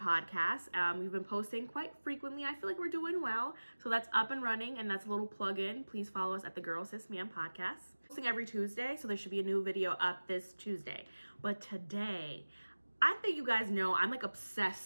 We've been posting quite frequently. I feel like we're doing well. So that's up and running, and that's a little plug-in. Please follow us at the Girl Sis Man podcast. Posting every Tuesday, so there should be a new video up this Tuesday. But today, I think you guys know I'm like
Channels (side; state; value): both; inverted; correlation -1.00